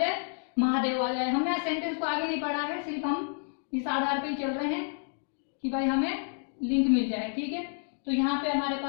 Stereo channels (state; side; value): silent; right; 58 dB below the other